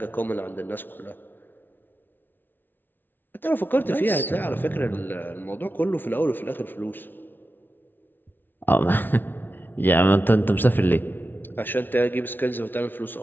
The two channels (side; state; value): right; late; 0.094 ms